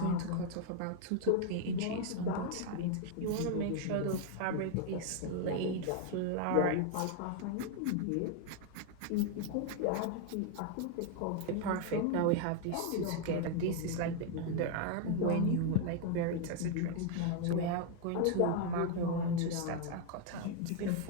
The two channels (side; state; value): both; different; correlation 0.00